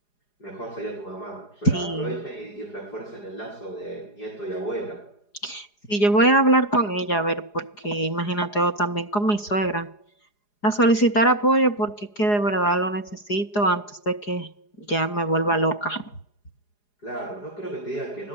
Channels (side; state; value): right; late; 4.8 ms